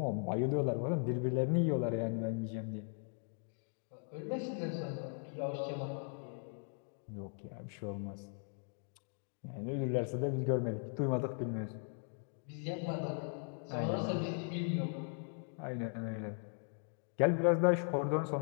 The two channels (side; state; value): right; silent; 52 dB below the other